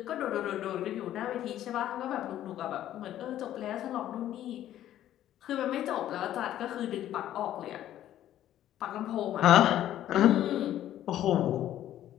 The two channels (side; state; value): right; quieter; 12.3 dB